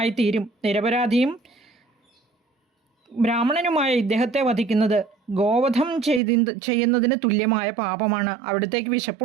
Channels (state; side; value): drops out; left; at 6.2 s